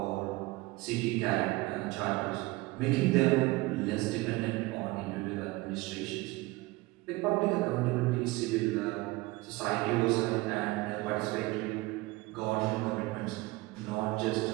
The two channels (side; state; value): left; quieter; 21.3 dB